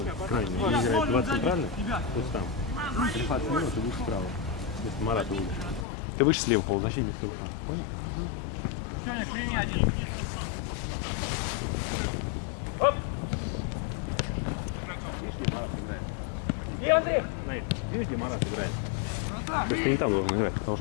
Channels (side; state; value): right; drops out; at 5.9 s